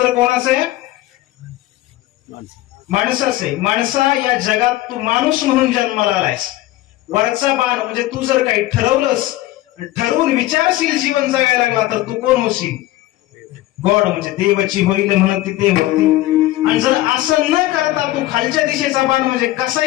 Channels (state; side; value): quieter; right; 16.3 dB